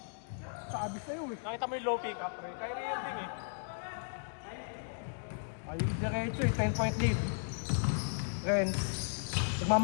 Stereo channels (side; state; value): right; silent; digital silence